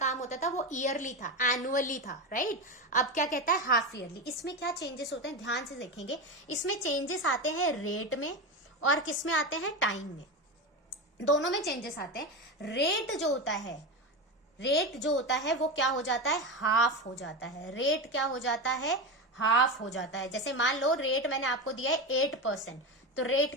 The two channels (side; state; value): both; normal; correlation 0.19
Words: होता था वो ईयरली था, एनुअली था, राइट। अब क्या कहता है, हाफ ईयरली। इसमें क्या चेंजेस होते हैं ध्यान से देखेंगे। इसमें चेंजेस आते हैं रेट में और किस में आते हैं, टाइम में। दोनों में चेंजेस आते हैं। रेट जो होता है वो क्या हो जाता है, हाफ हो जाता है। रेट क्या हो जाता है, हाफ हो जाता है। जैसे मान लो रेट मैंने आपको दिया है 8%, तो रेट